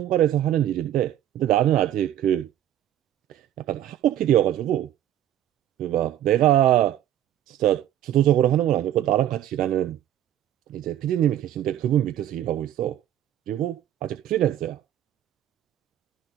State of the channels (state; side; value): quieter; left; 11.8 dB